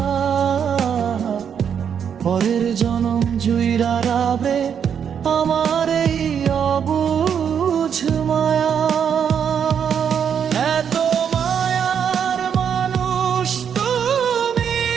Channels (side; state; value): left; quieter; 7.8 dB